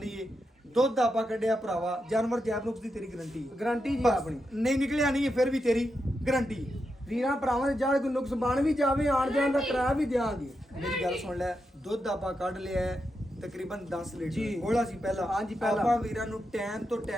ਹੈ ਦੁੱਧ ਆਪਾਂ ਕੱਢਿਆ ਭਰਾਵਾ ਜਾਨਵਰ ਜੈਬ ਨੁਕਸ ਦੀ ਤੇਰੀ ਗਰੰਟੀ ਹੈ गारंटी जी ਬਸ, अपनी ਨਹੀਂ ਨਿਕਲਿਆ ਨਹੀਂ ਹੈ ਫਿਰ ਵੀ ਤੇਰੀ ਗਰੰਟੀ ਹੈ ਵੀਰਾਂ ਭਰਾਵਾਂ ਦੇ ਜਦ ਕੋਈ ਨੁਕਸ ਬਣ ਵੀ ਜਾਵੇ ਆਣ ਜਾਣ ਦਾ ਕਿਰਾਇਆ ਵੀ ਦਿਆਂਗੇ ਮੇਰੀ ਗੱਲ ਸੁਣ ਲੈ ਦੁੱਧ ਆਪਾਂ ਕੱਢ ਲਿਆ ਹੈ, ਤਕਰੀਬਨ 10 ਲੀਟਰ ਜੀ। ਗੋਲਾ ਸੀ ਪਹਿਲਾਂ ਹਾਂਜੀ, ਪਹਿਲਾਂ। ਆਪਾਂ ਵੀਰਾਂ ਨੂੰ ਟਾਈਮ ਤੋਂ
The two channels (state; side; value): normal; both; correlation 0.86